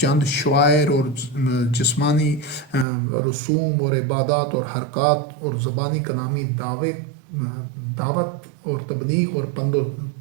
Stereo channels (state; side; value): drops out; left; at 2.9 s